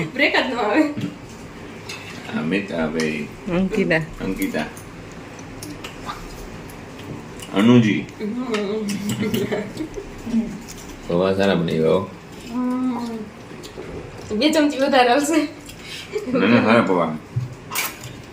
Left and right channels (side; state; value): both; identical; correlation 1.00